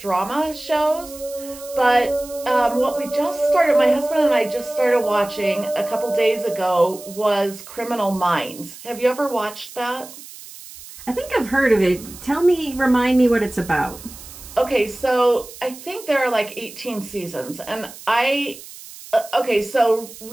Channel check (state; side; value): noise; right; hiss, 16 dB below the sound